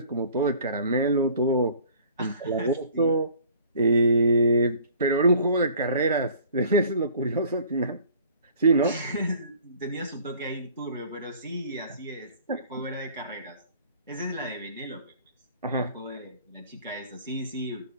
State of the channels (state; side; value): inverted; both; correlation -0.51